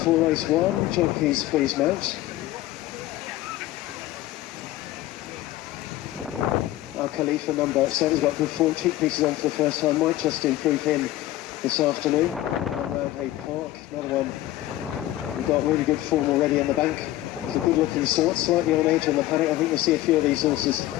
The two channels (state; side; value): quieter; right; 15.3 dB